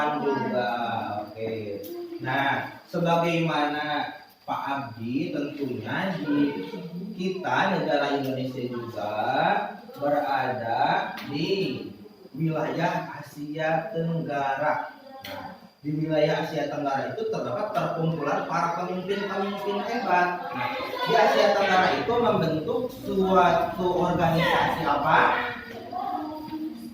juga. Oke. Nah, sebagaimana Pak Abdi, tentunya di kita negara Indonesia juga berada di wilayah Asia Tenggara. Nah, di wilayah Asia Tenggara itu terdapat perkumpulan para pemimpin-pemimpin hebat. Nah, di Asia Tenggara itu membentuk suatu organisasi apa?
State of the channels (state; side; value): identical; both; correlation 1.00